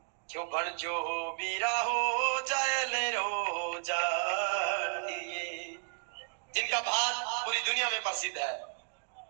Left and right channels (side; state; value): left; silent; digital silence